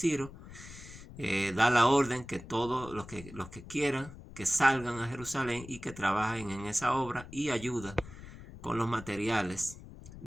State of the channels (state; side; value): noise; left; rumble, 15 dB below the sound